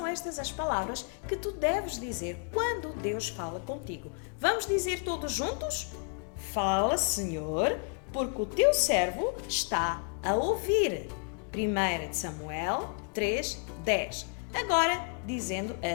estas as palavras que tu deves dizer quando Deus fala contigo. Vamos dizer todos juntos? Fala, Senhor, porque o teu servo está a ouvir. 1 Samuel 3, 10. Agora, dizendo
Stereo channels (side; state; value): right; quieter; 38.9 dB